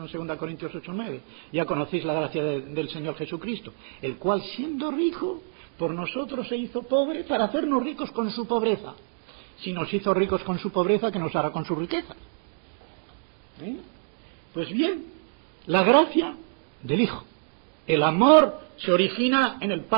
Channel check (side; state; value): left; silent; 60 dB below the other